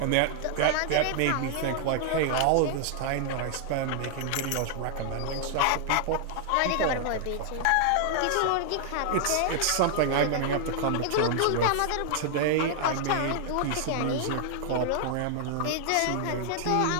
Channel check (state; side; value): different; both; correlation -0.01